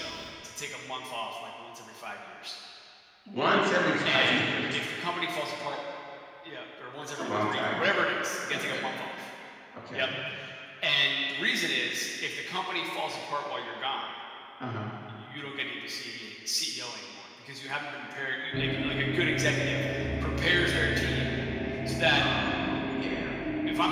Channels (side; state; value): both; identical; correlation 1.00